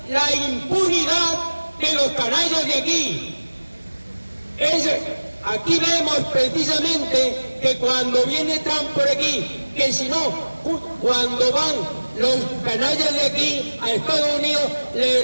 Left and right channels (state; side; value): inverted; both; correlation -1.00